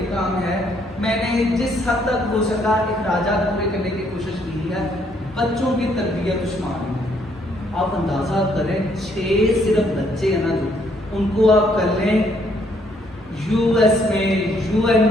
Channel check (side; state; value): both; normal; correlation 0.69